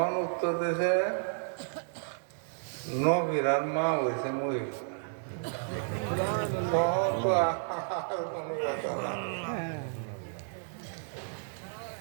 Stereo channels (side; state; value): left; silent; digital silence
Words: উত্তর দিয়েছে নবীরার মা হয়েছে মহিলা। তখন তো আর কোনো কথা না।